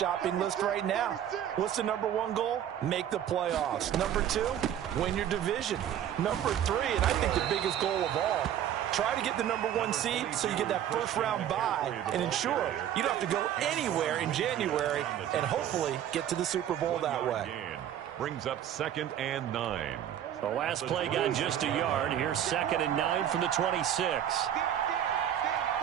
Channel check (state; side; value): quieter; left; 10.5 dB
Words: list right now. What's the #1 goal? Make the playoffs. #2, win your division. #3, and I think the biggest goal of all, try to get the #1 seed so you get that 1st round bye and ensure you don't have to go anywhere in January and hopefully get to the Super Bowl that way. Brings up 2nd and 9. The last play got just a yard. Here's 2nd and 9 from the 26.